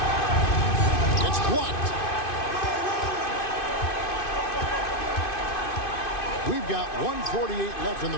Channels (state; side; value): late; right; 2.5 ms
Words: It's blocked. We've got 1:48 left in the